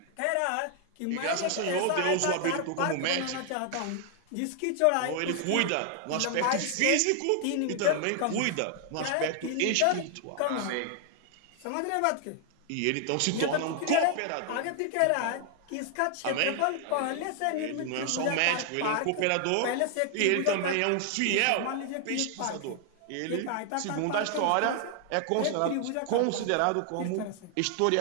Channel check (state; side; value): different; both; correlation 0.00